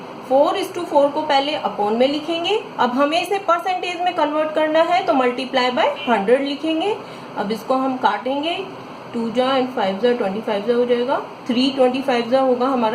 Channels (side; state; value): both; identical; correlation 1.00